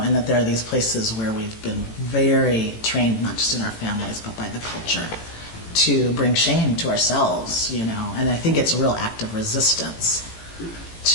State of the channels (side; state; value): right; late; 18 ms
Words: that there are these places where we've been very trained, not just in our families, but by the culture, to bring shame to ourselves, And I think it's a real act of resistance